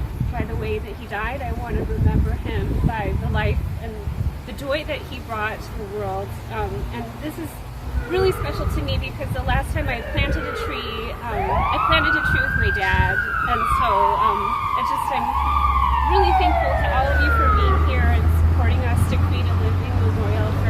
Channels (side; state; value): both; identical; correlation 1.00